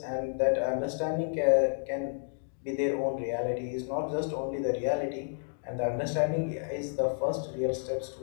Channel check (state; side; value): silent; right; digital silence